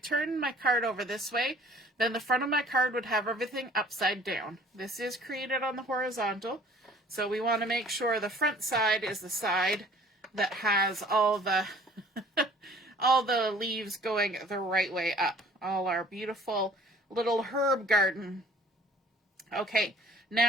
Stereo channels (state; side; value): normal; both; correlation 0.53